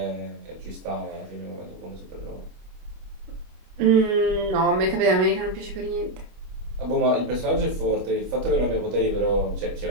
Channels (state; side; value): late; left; 25 ms